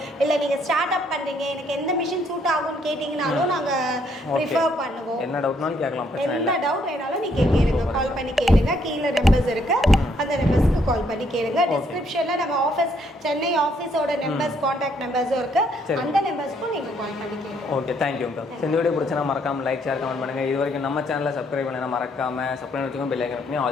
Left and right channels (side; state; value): both; normal; correlation 0.70